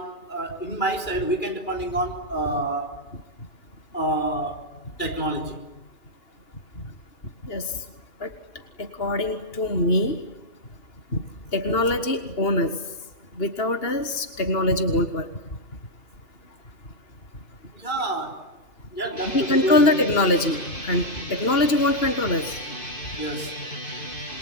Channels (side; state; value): right; late; 2.8 ms